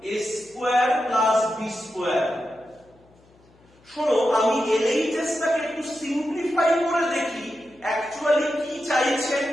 a square plus b square। শোনো, আমি LHS টাকে একটু সিম্পলিফাই করে দেখি অ্যাকচুয়ালি কি চাইছে।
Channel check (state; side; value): noise; left; hum, 30 dB below the sound